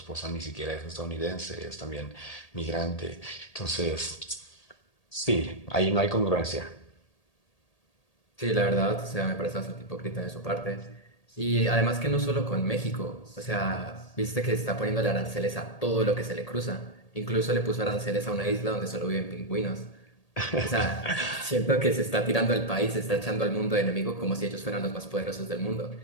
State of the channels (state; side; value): late; right; 1.8 ms